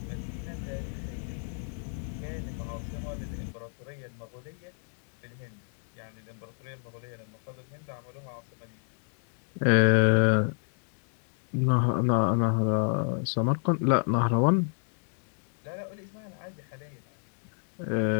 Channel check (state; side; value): silent; right; 58 dB below the other